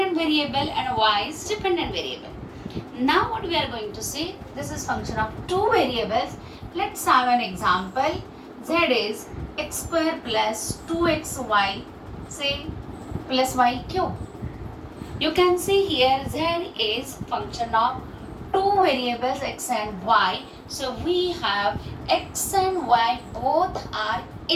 variable and y is dependent variable. Now what we are going to see, this is function of two variables. Let's have an example. Z is x square plus 2xy, say, plus y cube. You can see here z is function of two variables x and y. So we have x and y both are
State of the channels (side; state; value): both; identical; correlation 1.00